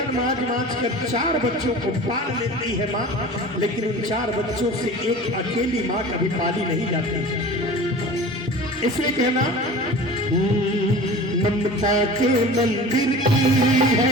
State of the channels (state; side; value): normal; both; correlation 0.38